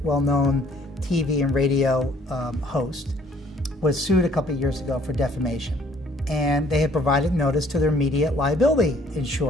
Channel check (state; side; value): normal; both; correlation 0.60